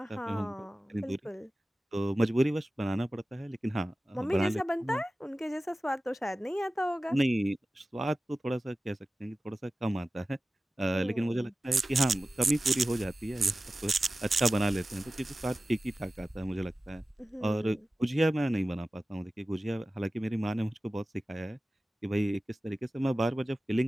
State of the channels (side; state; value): both; normal; correlation 0.96